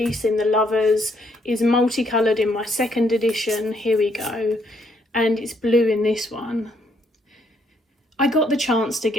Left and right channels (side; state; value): both; normal; correlation 0.71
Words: in the Lovers is multicoloured in my second edition. Here we go. And it's blue in this one. I got the chance to